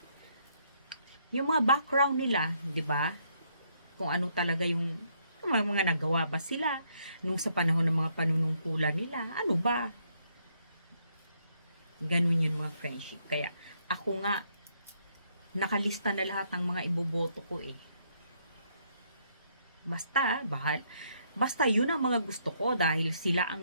yung mga background nila, 'di ba? Kung ano talaga yung mga nagawa ba sila nung sa panahon ng mga panunungkulan nila. Ano ba? Ganun yun mga friendship. Kaya ako nga nakalista na lahat ng mga iboboto ko eh. Basta yun ang mga gusto ko dahil sila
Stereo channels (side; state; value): both; inverted; correlation -0.72